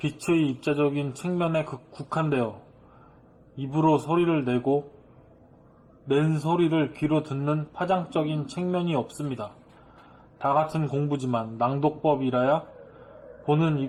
입자적인 측면에 국한되어 입으로 소리를 내고 낸 소리를 귀로 듣는 파장적인 측면이 없습니다. 다 같은 공부지만 낭독법이라야 보는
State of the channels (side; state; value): both; identical; correlation 1.00